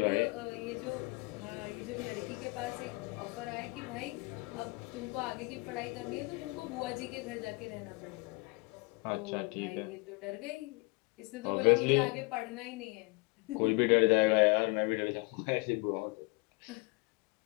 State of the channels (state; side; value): quieter; right; 28.3 dB